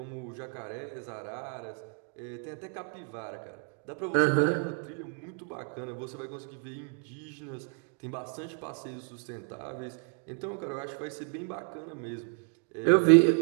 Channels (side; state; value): left; quieter; 38.4 dB